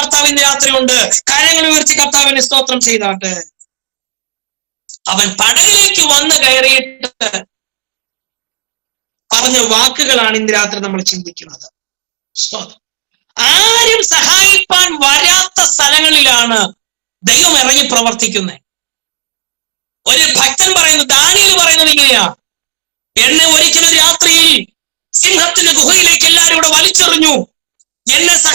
രാത്രിയുണ്ട്. കരങ്ങൾ ഉയർത്തി കർത്താവിനെ സ്തോത്രം ചെയ്താട്ടെ. അവൻ പടകിലേക്ക് വന്ന് കയറിയിട്ട് പറഞ്ഞ വാക്കുകളാണ് ഇന്ന് രാത്രി നമ്മൾ ചിന്തിക്കുന്നത്. ആരും സഹായിപ്പാൻ വരാത്ത സ്ഥലങ്ങളിലാണ് ദൈവം ഇറങ്ങി പ്രവർത്തിക്കുന്നത്. ഒരു ഭക്തൻ പറയുന്നത്, ദാനിയേൽ പറയുന്നത് ഇങ്ങനെയാ, എന്നെ ഒരിക്കലും രാത്രിയിൽ സിംഹത്തിന്റെ ഗുഹയിലേക്ക് എല്ലാവരും കൂടെ വലിച്ചെറിഞ്ഞു. എന്നെ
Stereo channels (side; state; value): left; silent; 60 dB below the other